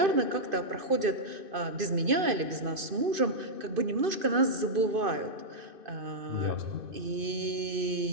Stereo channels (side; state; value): left; late; 2.5 ms